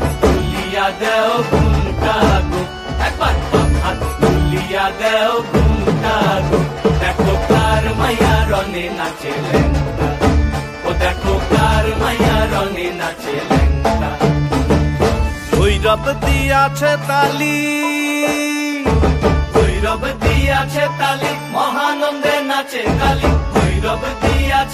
তুলিয়া দেও ঘুমটা গো, একবার হাত তুলিয়া দেও ঘুমটা গো, দেখো কার মাইয়া রঙে নাচে লেঙ্গা, ও দেখো কার মাইয়া রঙে নাচে লেঙ্গা। ভৈরব দিয়াছে তালি, ভৈরব দিয়াছে তালি, মহানন্দে নাচে কালী, ভৈরব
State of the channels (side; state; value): both; identical; correlation 1.00